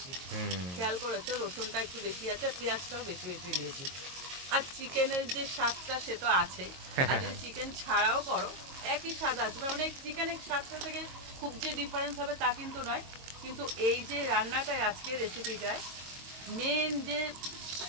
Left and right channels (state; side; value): late; left; 22 ms